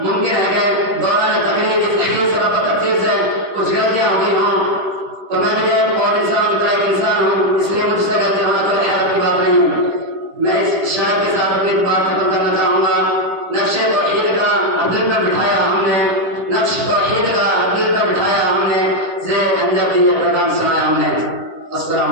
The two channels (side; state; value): left; late; 10 ms